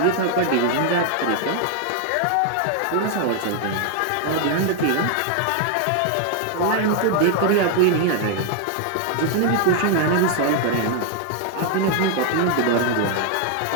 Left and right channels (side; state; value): both; different; correlation 0.00